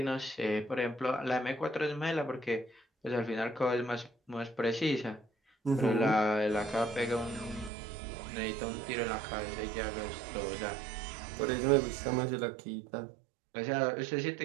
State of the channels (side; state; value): left; drops out; at 7.7 s